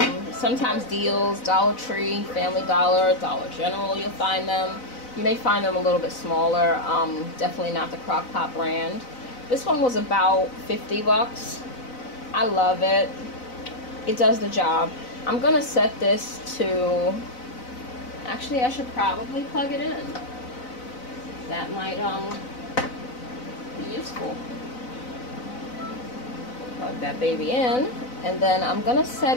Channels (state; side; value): late; right; 4.0 ms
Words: sometimes deals, Dollar Tree, Family Dollar, Dollar General, you'll find them. You may find them a little bit smaller, definitely not the crock pot brand. This one was about 50 bucks. I love it. It does the job. I'm gonna set this to, actually I should probably plug it in. That might be useful. Plug that baby in, and then I'm gonna